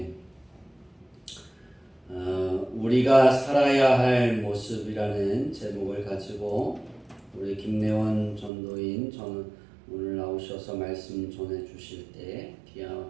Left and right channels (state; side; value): drops out; left; at 8.5 s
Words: 우리가 살아야 할 모습이라는 제목을 가지고 우리 김래원 전도인 오늘 나오셔서 말씀 전해 주실 때 귀한